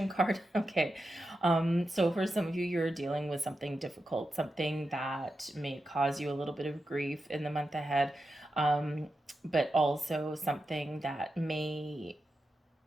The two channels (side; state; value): both; normal; correlation 0.89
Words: card. Okay, so for some of you, you're dealing with something difficult, something that may cause you a little bit of grief in the month ahead, but also something that may,